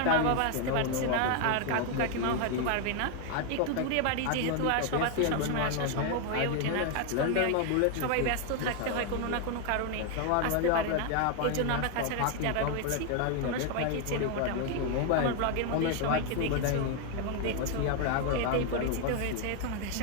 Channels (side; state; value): both; different; correlation 0.01